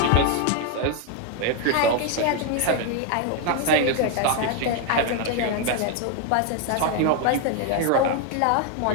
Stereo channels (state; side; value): different; both; correlation 0.01